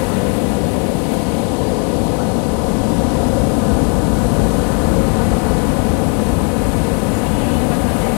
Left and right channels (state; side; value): quieter; right; 37.8 dB